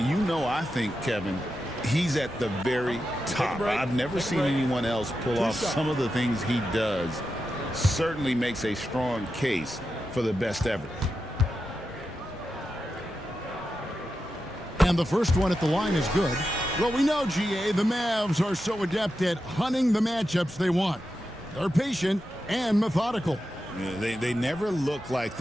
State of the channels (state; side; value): normal; both; correlation 0.89